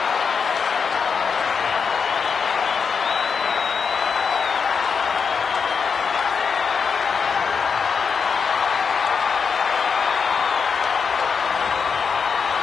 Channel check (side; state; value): right; quieter; 5.9 dB